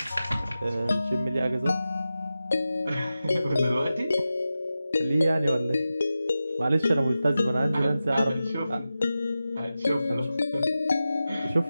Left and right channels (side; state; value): both; inverted; correlation -0.93